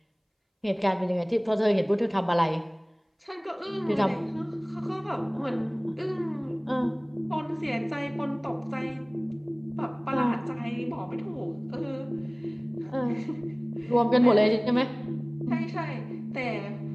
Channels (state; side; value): identical; both; correlation 1.00